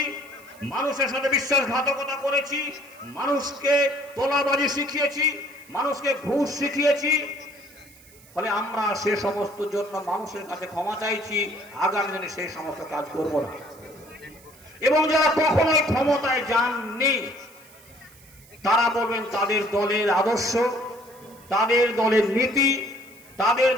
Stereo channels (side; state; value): right; noise; hiss, 24 dB below the sound